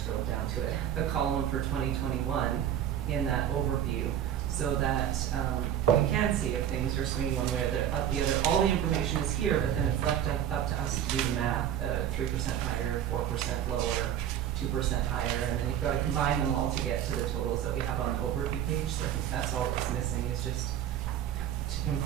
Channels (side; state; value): left; quieter; 10.4 dB